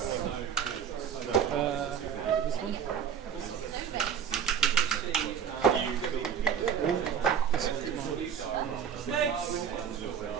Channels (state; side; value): quieter; left; 7.8 dB